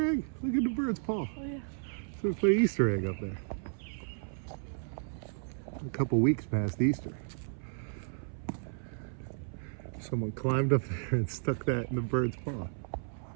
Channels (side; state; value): left; silent; 55 dB below the other